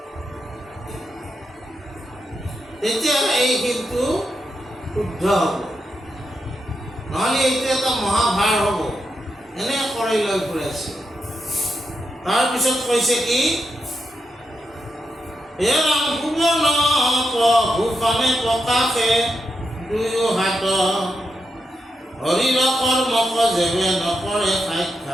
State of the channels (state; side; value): normal; both; correlation 0.85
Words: তেতিয়াহ'লে এই শিৰটো শুদ্ধ হ'ব, নহ'লে এইটো এটা মহাভাৰ হ'ব। এনে কৰি লৈ ফুৰাইছে। তাৰপিছত কৈছে কি, হে ৰাম ভুৱন ভূষণে প্ৰকাশে দুয়ো হাত, হৰিৰ কৰ্মক যেবে নকৰে